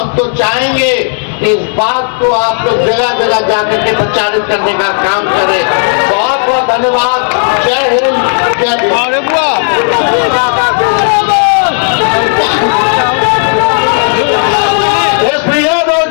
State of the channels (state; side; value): silent; right; 60 dB below the other